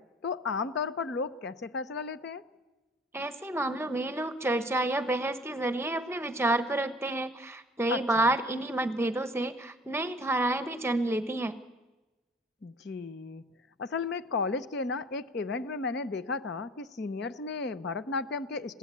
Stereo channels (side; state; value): both; normal; correlation 0.49